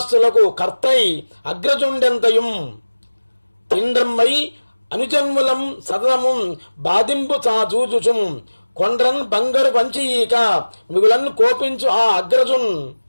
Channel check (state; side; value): inverted; both; correlation -1.00